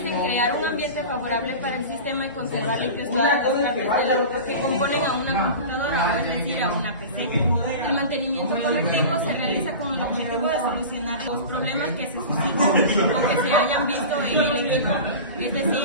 en crear un ambiente favorable para el sistema y conservar limpios todas las partes que componen a una computadora, es decir, a una PC. El mantenimiento correctivo se realiza con el objetivo de solucionar los problemas que se suscitan o que se hayan visto en el equipo. Es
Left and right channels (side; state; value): both; inverted; correlation -0.32